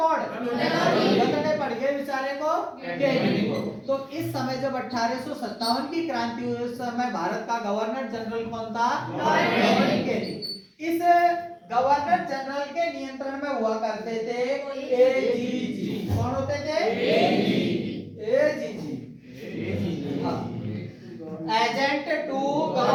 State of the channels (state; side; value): identical; both; correlation 1.00